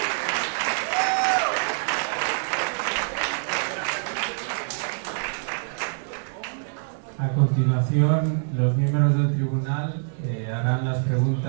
A continuación, los miembros del tribunal harán las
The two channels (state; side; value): silent; left; 59 dB below the other